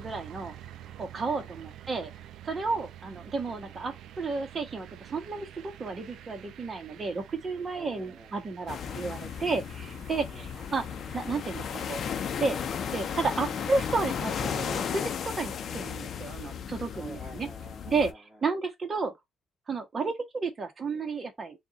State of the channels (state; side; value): normal; both; correlation 0.74